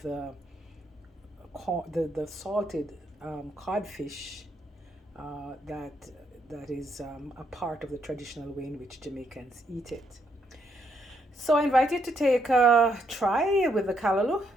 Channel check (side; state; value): both; normal; correlation 0.76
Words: the salted codfish that that is a part of the traditional way in which Jamaicans eat it. So I invite you to take a try with the callaloo